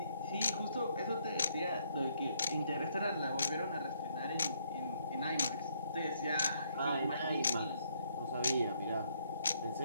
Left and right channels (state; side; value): inverted; both; correlation -0.70